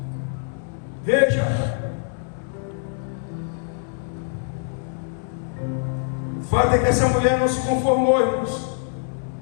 Veja, o fato é que essa mulher não se conformou, irmãos.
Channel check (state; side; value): silent; right; digital silence